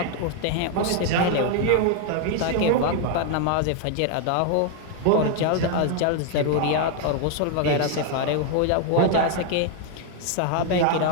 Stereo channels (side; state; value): both; different; correlation 0.00